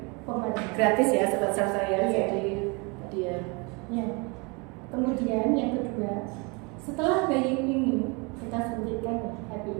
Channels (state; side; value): quieter; left; 30.0 dB